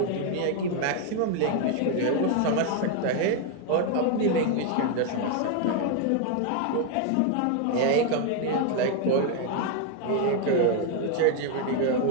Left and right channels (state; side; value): different; both; correlation 0.00